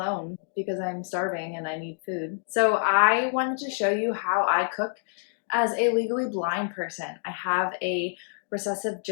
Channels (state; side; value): silent; right; digital silence